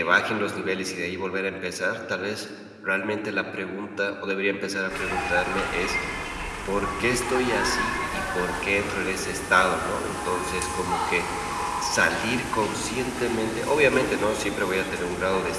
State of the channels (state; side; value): identical; both; correlation 1.00